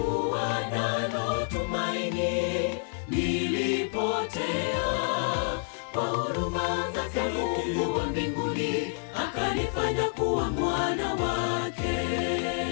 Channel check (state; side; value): silent; right; digital silence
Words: nalo tumaini, nilipotea. Kwa huruma zake Mungu wa mbinguni akanifanya kuwa mwana wake.